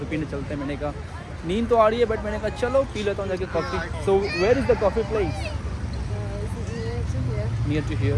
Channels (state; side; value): identical; both; correlation 1.00